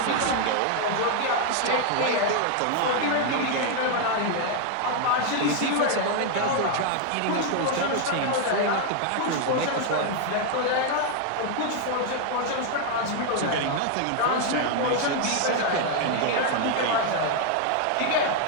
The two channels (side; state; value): both; different; correlation 0.00